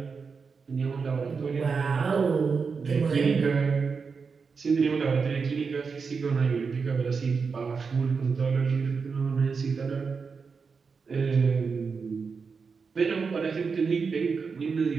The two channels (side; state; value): left; quieter; 5.2 dB